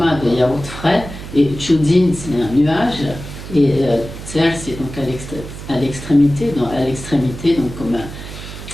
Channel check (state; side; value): noise; right; hum, 11 dB below the sound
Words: de yaourt frais, et Chudin c'est un nuage. Et Tser, c'est donc à l'extrémité, donc comme